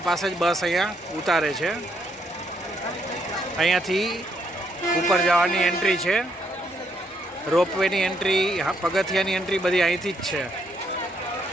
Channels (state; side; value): normal; both; correlation 0.74